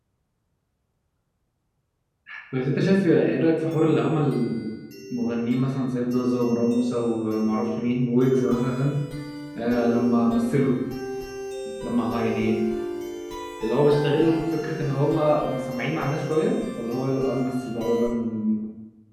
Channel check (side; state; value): both; identical; correlation 1.00